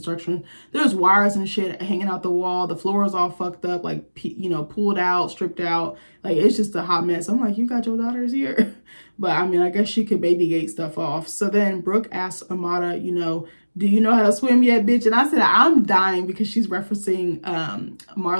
There's wires and shit hanging out the wall. The floor is all fucked up, like, you know, pulled out, stripped out. Like, it's just a hot mess. I'm like, you got your daughters here? But I mean, I guess she could baby gate stuff off. So then Brooke asks Amada, you know, do you know how to swim yet, bitch? And I said, I'm dying because she's referencing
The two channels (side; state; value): both; inverted; correlation -1.00